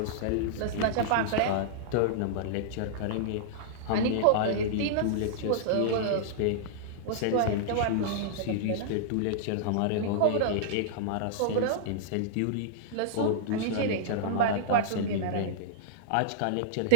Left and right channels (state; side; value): different; both; correlation -0.02